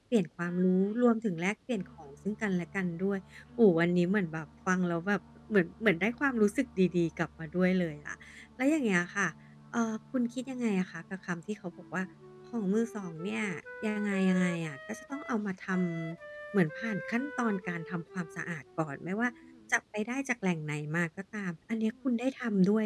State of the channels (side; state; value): both; identical; correlation 1.00